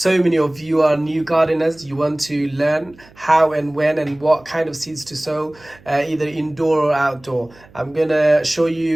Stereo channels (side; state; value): right; noise; hum, 26 dB below the sound